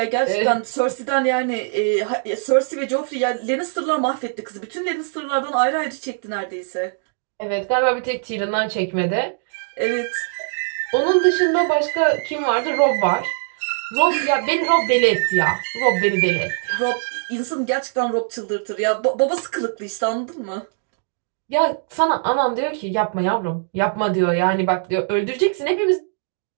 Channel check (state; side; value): silent; left; digital silence